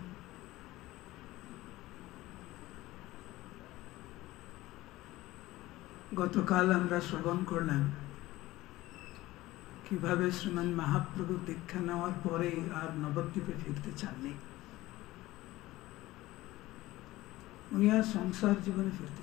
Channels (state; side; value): quieter; right; 17.7 dB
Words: গতকাল আমরা শ্রবণ করলাম কিভাবে শ্রীমান মহাপ্রভু দীক্ষা নেওয়ার পরে আর নবদ্বীপে ফিরতে চাননি। উনি আর সংসার জীবনে ফিরতে